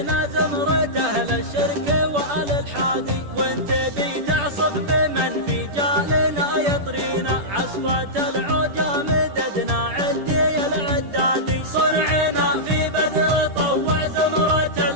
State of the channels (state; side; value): late; left; 10 ms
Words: زمرة اهل الشرك وآل الحادي. وانت بي تعصف بمن في جالنا يطرينا، عصفة العوجة مددنا عدي العدادي. صنعنا في بدر طوع زمرة